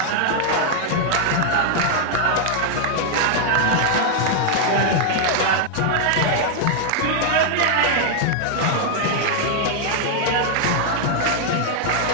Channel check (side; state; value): both; different; correlation 0.00